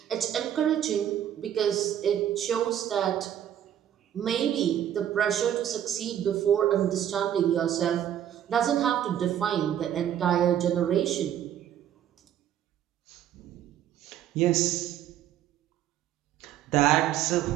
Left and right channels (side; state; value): left; quieter; 10.6 dB